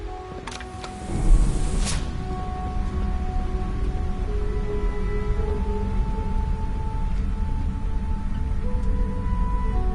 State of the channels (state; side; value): identical; both; correlation 1.00